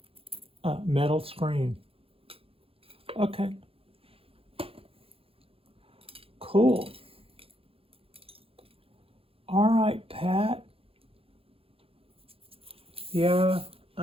metal screen. Okay. Cool. All right, Pat. Yeah,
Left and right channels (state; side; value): late; left; 0.27 ms